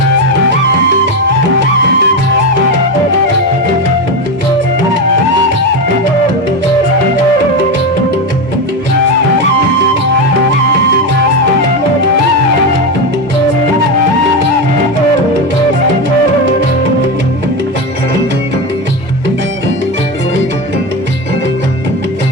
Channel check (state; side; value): normal; both; correlation 0.14